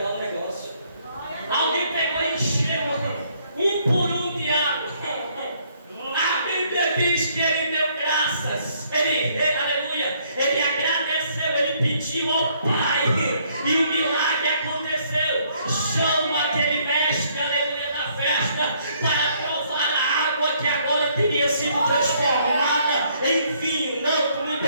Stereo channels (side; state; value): both; inverted; correlation -0.67